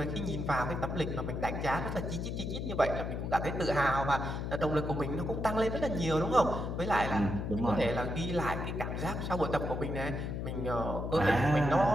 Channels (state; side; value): noise; left; hum, 3 dB below the sound